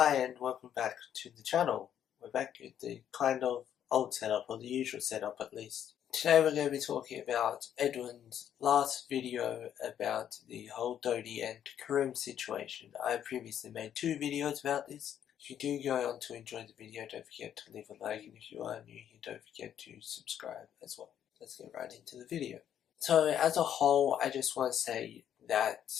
and welcome back to the channel. We're back with the kind of old setup, or the usual setup at least. Today we're going to be talking about Edwin's last video about the whole Dodie and Karim situation. I previously made 2 videos about this. If you do go on to enjoy the video, don't forget to leave a like, and if you are new here, don't forget to subscribe as well. Let's get right into the video. So as a whole, I just want to say that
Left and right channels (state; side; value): quieter; right; 9.8 dB